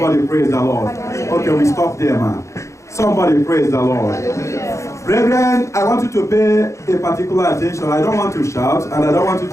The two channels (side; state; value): right; late; 0.14 ms